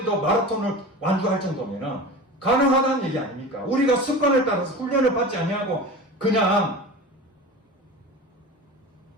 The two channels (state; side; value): normal; both; correlation 0.32